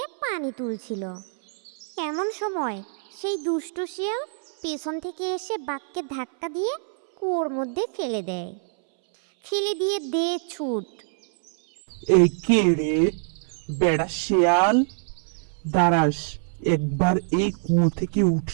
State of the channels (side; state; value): left; silent; 62 dB below the other